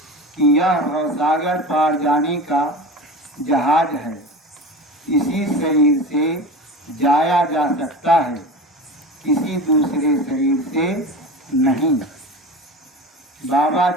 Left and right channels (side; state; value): both; normal; correlation 0.31